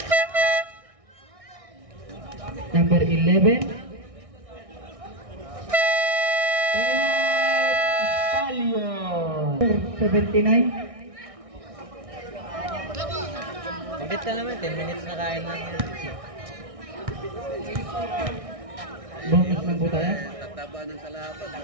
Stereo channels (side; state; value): left; late; 1.6 ms